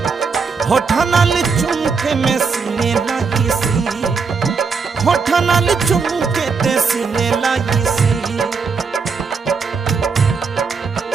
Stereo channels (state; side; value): quieter; left; 5.2 dB